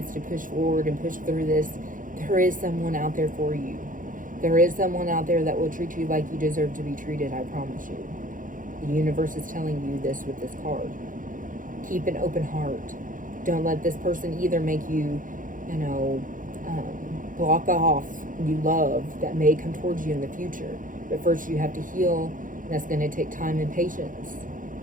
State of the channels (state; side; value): late; left; 0.39 ms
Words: to push forward and push through this, there is someone out there for you. There is someone out there that will treat you like you deserve to be treated, I promise you. The universe is telling you this with this card. Keep an open heart. Don't let this person either make you, you know, block off new love that may come towards you in the future. But first you have to heal, and that's going to take time and patience.